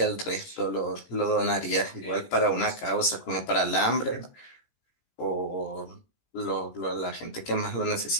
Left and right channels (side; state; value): right; late; 17 ms